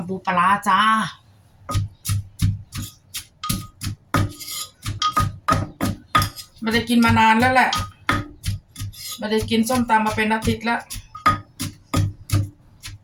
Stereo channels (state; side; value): identical; both; correlation 1.00